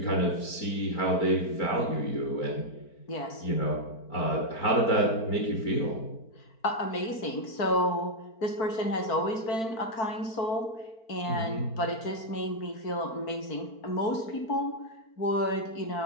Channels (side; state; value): right; late; 4.5 ms